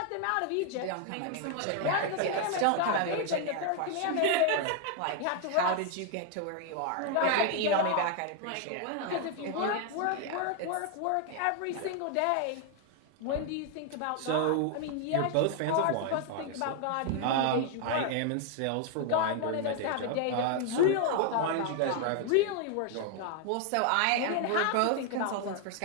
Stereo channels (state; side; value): different; both; correlation 0.00